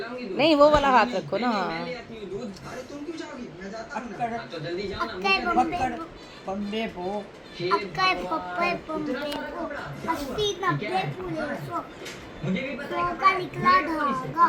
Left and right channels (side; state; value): both; identical; correlation 1.00